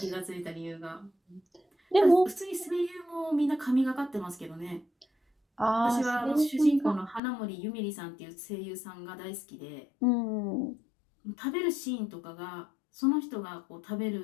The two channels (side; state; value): right; drops out; at 7.2 s